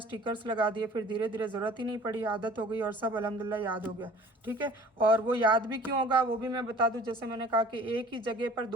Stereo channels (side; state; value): both; normal; correlation 0.49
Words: लगा दिए, फिर धीरे धीरे ज़रूरत ही नहीं पड़ी, आदत हो गई और सब अल्हम्दुलिल्लाह याद हो गया, ठीक है। और वो याद भी क्यों होगा वो भी मैं बता दूँ। जैसे मैंने कहा कि एक ही जगह पर